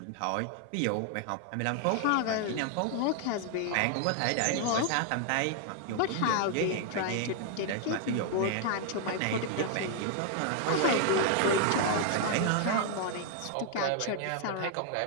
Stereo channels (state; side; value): different; both; correlation 0.00